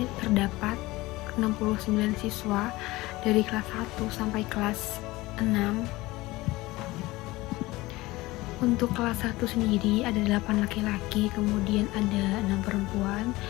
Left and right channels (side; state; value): right; quieter; 19.9 dB